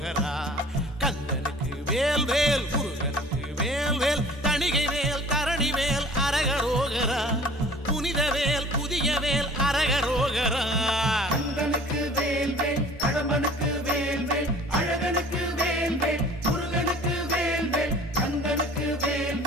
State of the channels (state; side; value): normal; both; correlation 0.48